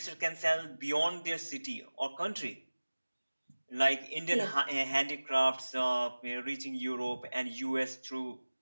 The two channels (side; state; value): both; inverted; correlation -1.00